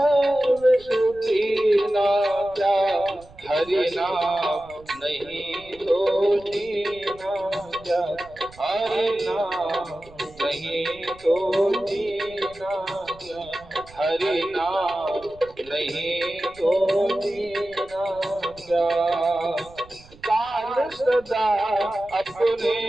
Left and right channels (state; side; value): noise; right; rumble, 23 dB below the sound